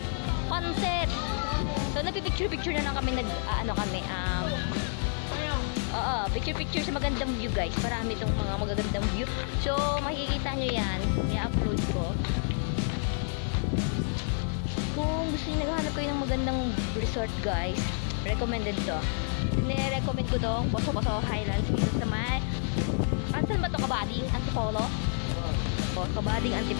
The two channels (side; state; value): right; silent; digital silence